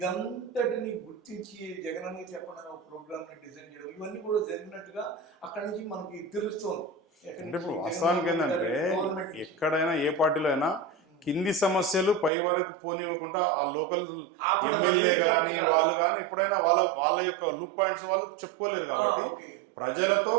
గుర్తించి జగనన్న చెప్పడానికి ఒక ప్రోగ్రామ్ని డిజైన్ చేయడం, ఇవన్నీ కూడా జరిగినట్టుగా అక్కడి నుంచి మనకి తెలుస్తోంది. అంటే ఇప్పుడు వాస్తవానికి ఏంటంటే ఎక్కడైనా ఏ పార్టీలో అయినా కింది సమస్యలు పై వరకు పోనివ్వకుండా ఆ లోకల్ ఎమ్మెల్యే కానీ వాళ్ళు కానీ ఎప్పుడైనా వాళ్ళ యొక్క లూప్ పాయింట్స్ వాళ్ళు చెప్పుకోలేరు. కాబట్టి ప్రజలతో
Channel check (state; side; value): drops out; left; at 12.3 s